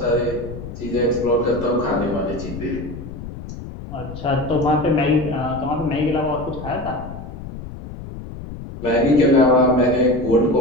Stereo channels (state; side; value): noise; left; rumble, 11 dB below the sound